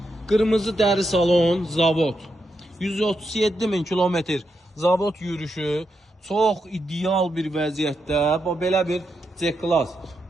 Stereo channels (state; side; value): normal; both; correlation 0.83